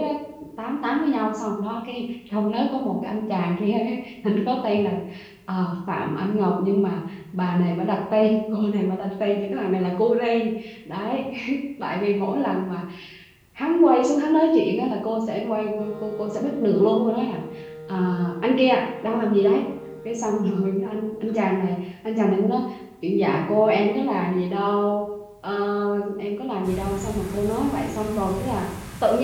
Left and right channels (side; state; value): both; identical; correlation 1.00